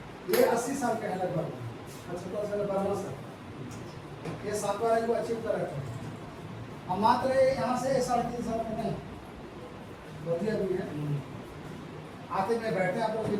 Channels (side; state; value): both; identical; correlation 1.00